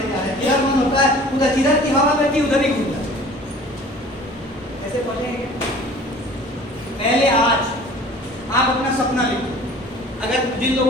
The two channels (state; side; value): normal; both; correlation 0.47